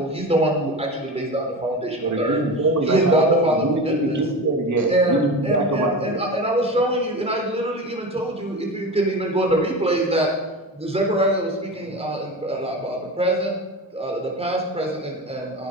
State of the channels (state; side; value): normal; both; correlation 0.28